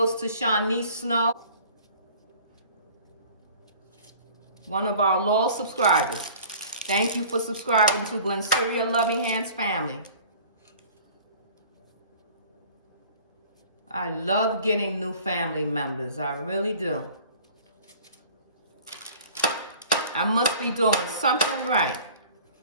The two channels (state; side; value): inverted; both; correlation -0.47